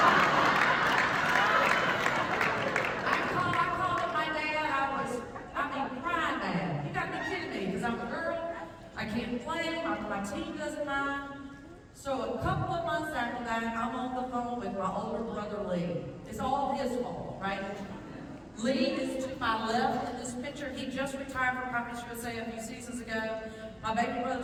I'm a girl, I can't play, my team doesn't mind. So a couple of months after that, I'm on the phone with my older brother, Lee. It's all his fault, right? Lee is to my left in this picture. He just retired from Conference USA a few seasons ago. My baby brother,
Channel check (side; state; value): both; identical; correlation 1.00